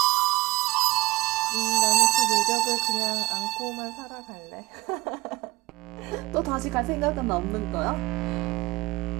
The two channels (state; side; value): quieter; left; 20.5 dB